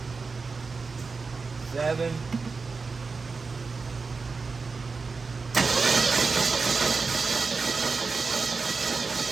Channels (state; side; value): quieter; left; 4.5 dB